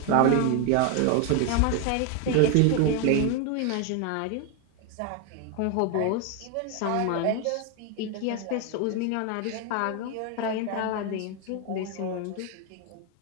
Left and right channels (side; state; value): both; different; correlation 0.01